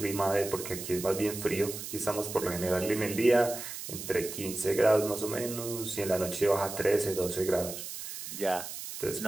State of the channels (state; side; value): noise; right; hiss, 8 dB below the sound